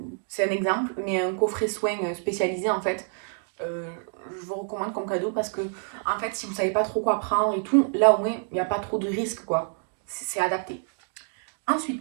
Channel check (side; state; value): left; silent; 60 dB below the other